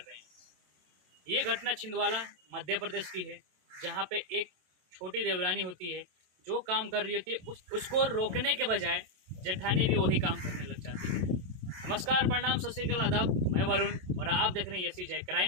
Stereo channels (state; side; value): late; left; 27 ms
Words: हैं। ये घटना छिंदवाड़ा मध्य प्रदेश की है, जहाँ पे एक छोटी देवरानी होती है जो काम कर रही होती है, उसको रोकने के बजाय जेठानी भी वही काम करने लग जाती है। नमस्कार, प्रणाम, सत श्री अकाल, आदाब। मैं वरुण और आप देख रहे हैं यसी जय